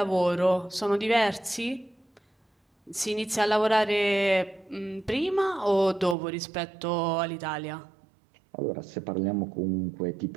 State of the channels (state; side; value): drops out; left; at 6.2 s